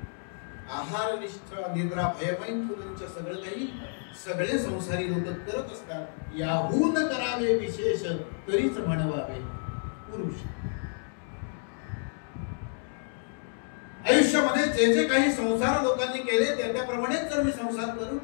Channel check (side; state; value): right; silent; digital silence